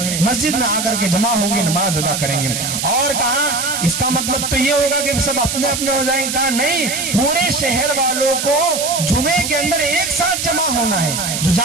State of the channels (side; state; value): right; noise; hiss, 3 dB below the sound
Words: مسجد میں آ کر کے جمع ہوں گے, نماز ادا کریں گے. اور کہا اس کا مطلب تو یہ ہوگا کہ سب اپنے اپنے ہو جائیں گے؟ کہا نہیں, پورے شہر والوں کو جمعے کے اندر ایک ساتھ جمع ہونا ہے, جو